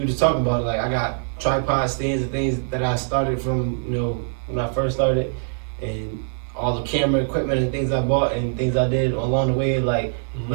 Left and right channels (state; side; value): silent; left; digital silence